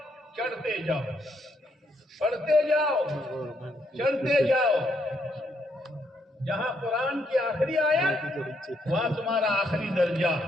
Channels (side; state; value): both; normal; correlation 0.74